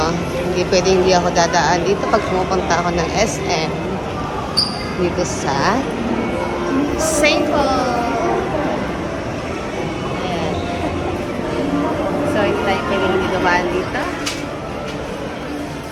Hindi pwedeng hindi ako dadaan dito pag pumupunta ako ng SM. Dito sa St. Paul. Ayan. So, hindi tayo pwedeng hindi dumaan dito.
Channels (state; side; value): identical; both; correlation 1.00